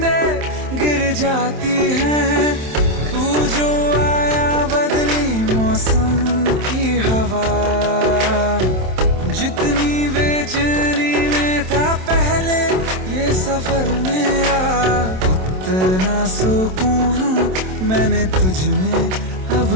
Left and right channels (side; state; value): left; late; 27 ms